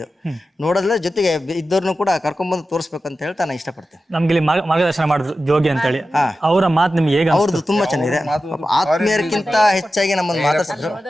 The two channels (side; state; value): both; normal; correlation 0.93